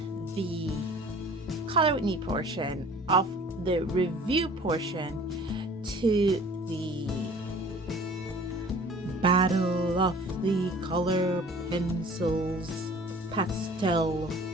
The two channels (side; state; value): both; normal; correlation 0.48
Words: the color with me portion of the review portion to the Battle of the Color Pencils Pastel